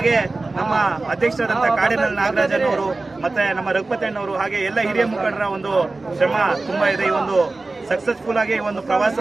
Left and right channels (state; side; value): quieter; left; 3.4 dB